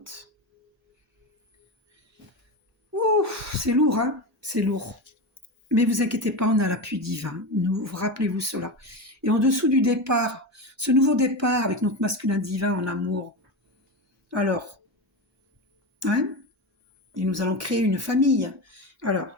Ouh, c'est lourd, hein? C'est lourd. Mais vous inquiétez pas, on a l'appui divin. Rappelez-vous cela. Et en dessous du départ, ce nouveau départ avec notre masculin divin en amour. Alors, hein? Et nous allons créer une famille. Alors,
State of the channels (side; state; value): both; normal; correlation 0.20